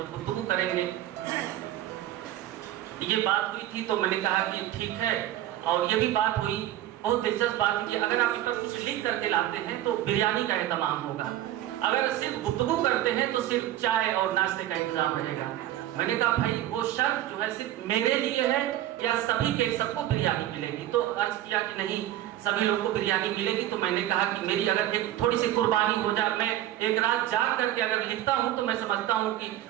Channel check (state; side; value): quieter; left; 13.3 dB